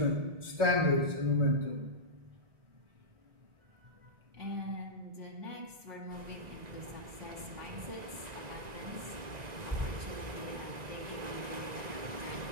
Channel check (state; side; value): late; left; 1.9 ms